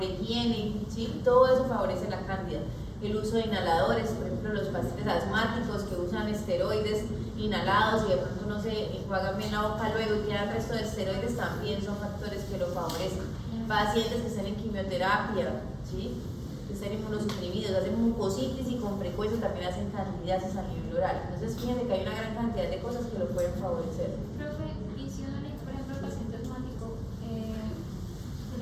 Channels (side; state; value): both; identical; correlation 1.00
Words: higiene, ¿sí? Todo eso favorece la cándida. El uso de inhaladores, por ejemplo, los pacientes asmáticos que usan esteroides inhalados y de pronto no se enjuagan bien la boca luego y quedan el resto de esteroides, también son factores que lo favorecen. Pacientes que estén en quimioterapia, ¿sí? Que estén inmunosuprimidos, hacen mucositis y con frecuencia también hacen candidiasis a nivel oral. Entonces fíjense que hay una gran cantidad de cosas que lo pueden favorecer. Profe, y si uno le, por ejemplo, al paciente asmático se